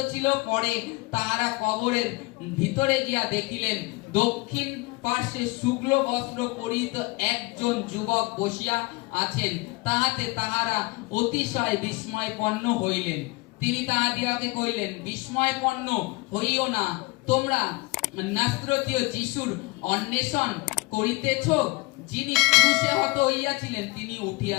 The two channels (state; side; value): quieter; right; 24.2 dB